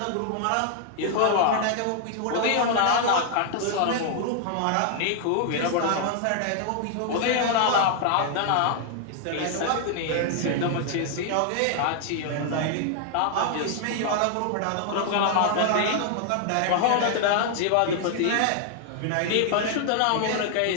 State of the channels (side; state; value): both; different; correlation 0.00